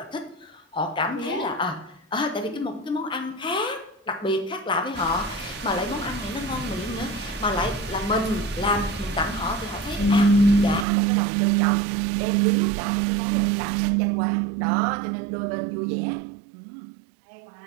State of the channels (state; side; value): drops out; left; at 10.9 s